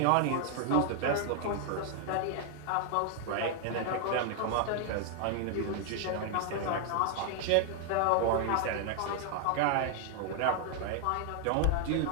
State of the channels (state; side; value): different; both; correlation 0.00